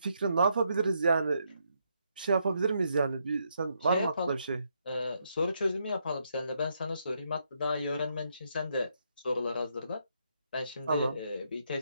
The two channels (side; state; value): both; inverted; correlation -0.77